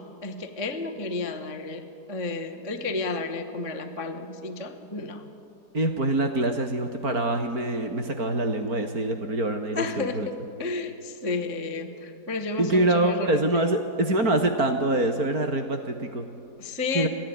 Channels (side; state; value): left; late; 4.4 ms